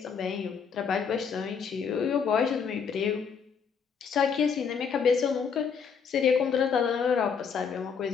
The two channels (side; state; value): right; quieter; 6.4 dB